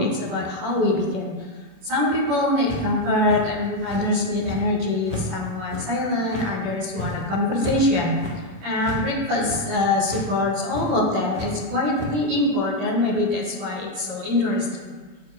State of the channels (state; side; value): late; left; 26 ms